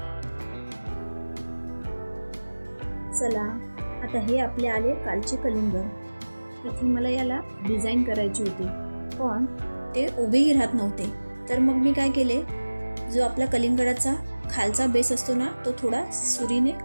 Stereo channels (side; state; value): both; inverted; correlation -1.00